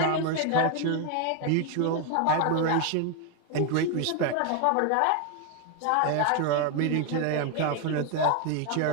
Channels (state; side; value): different; both; correlation 0.01